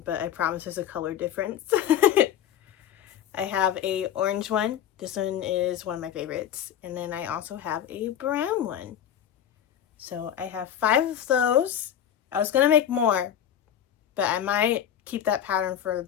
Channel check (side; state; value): right; quieter; 9.9 dB